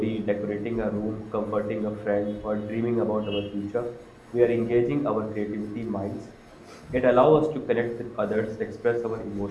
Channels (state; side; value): identical; both; correlation 1.00